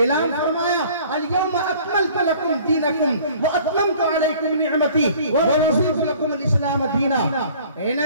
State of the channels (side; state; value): both; inverted; correlation -0.51